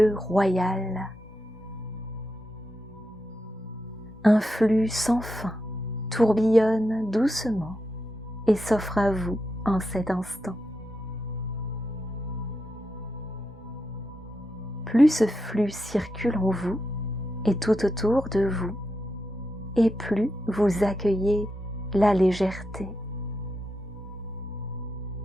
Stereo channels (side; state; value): both; normal; correlation 0.86